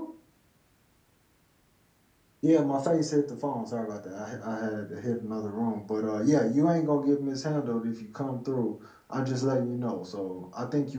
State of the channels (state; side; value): identical; both; correlation 1.00